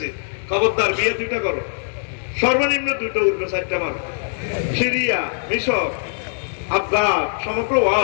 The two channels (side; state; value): right; silent; digital silence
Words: খবরদার বিয়ে 2টা করো, সর্বনিম্ন 2টা উঠবে 4টা মারো। সিরিয়া, মিশর, আফগান, সমগ্র